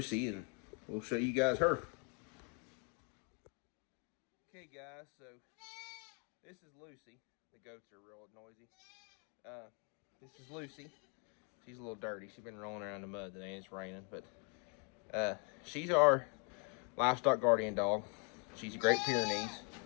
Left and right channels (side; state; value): right; quieter; 37.4 dB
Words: and we'll show you guys her. Okay, guys, so this is Lucy. The goats are real noisy. This is Lucy. She's a little dirty. She's been rolling around in the mud today, and it's raining, but she's our livestock guardian dog. She's a Great Pyrenees.